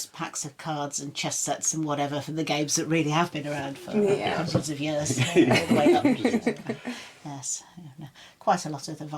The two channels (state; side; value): identical; both; correlation 1.00